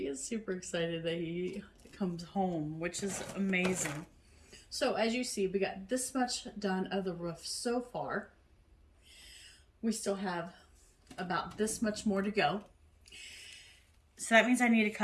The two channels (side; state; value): both; identical; correlation 1.00